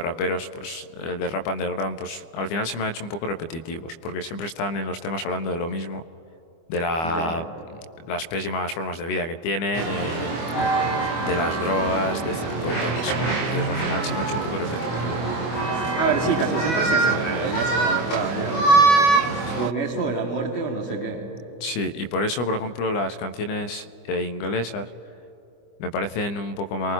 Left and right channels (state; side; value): late; right; 25 ms